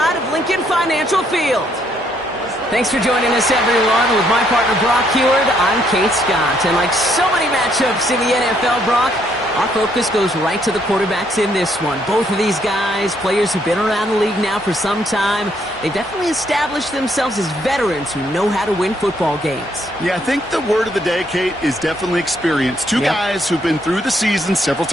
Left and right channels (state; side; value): normal; both; correlation 0.71